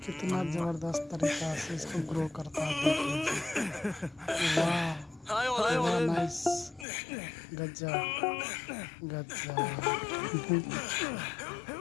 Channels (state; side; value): drops out; right; at 6.9 s